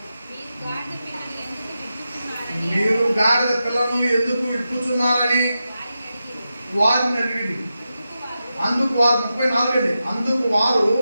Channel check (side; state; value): both; inverted; correlation -0.90